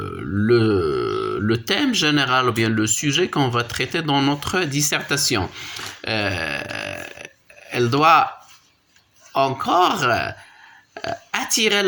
thème général ou bien le sujet qu'on va traiter dans notre dissertation. Euh, Elle doit encore attirer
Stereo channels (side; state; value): both; identical; correlation 1.00